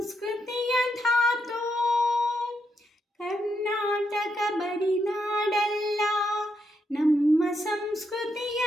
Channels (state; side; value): normal; both; correlation 0.80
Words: ಧಾತು. ಕರ್ನಾಟಕ ಬರಿನಾಡಲ್ಲ ನಮ್ಮ ಸಂಸ್ಕೃತಿಯ